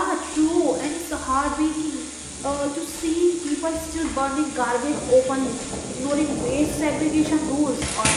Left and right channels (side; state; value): both; identical; correlation 1.00